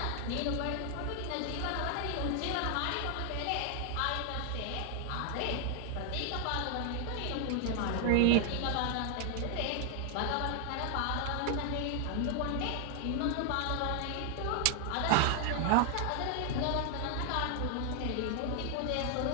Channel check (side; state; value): both; different; correlation 0.00